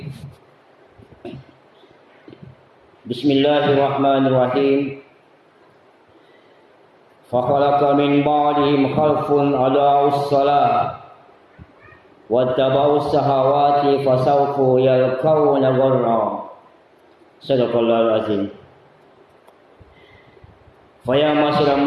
Bismillahirrahmanirrahim. فَخَلَقَ مِنْ بَعْدِهِمْ خَلْفٌ أَضَاعُوا الصَّلَاةَ وَاتَّبَعُوا الشَّهَوَاتِ فَسَوْفَ يَلْقَوْنَ غَيًّا. Sadaqallahul azim. Fa ya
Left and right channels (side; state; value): both; identical; correlation 1.00